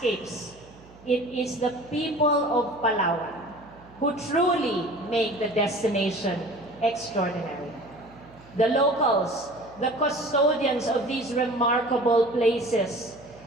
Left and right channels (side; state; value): right; noise; hum, 23 dB below the sound